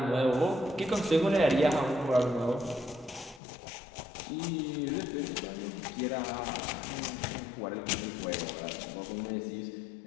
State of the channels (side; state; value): right; drops out; at 3.4 s